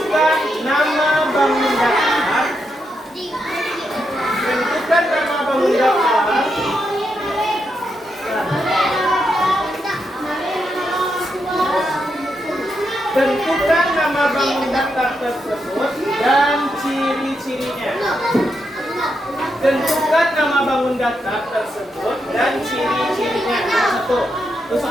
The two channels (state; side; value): normal; both; correlation 0.83